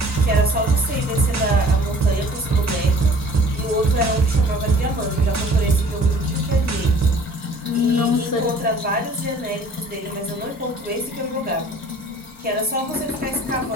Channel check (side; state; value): both; normal; correlation 0.51